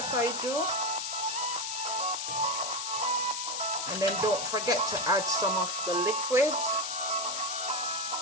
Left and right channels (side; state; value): left; noise; hiss, 3 dB below the sound